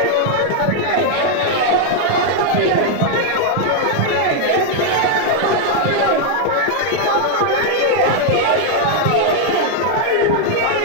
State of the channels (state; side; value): different; both; correlation 0.00